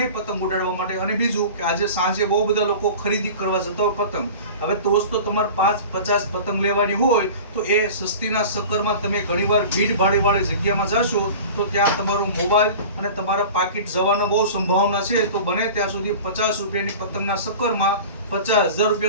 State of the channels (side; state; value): both; inverted; correlation -0.37